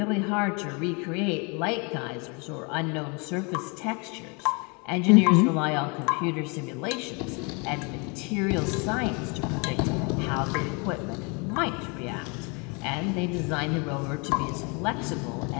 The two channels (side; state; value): right; quieter; 31.7 dB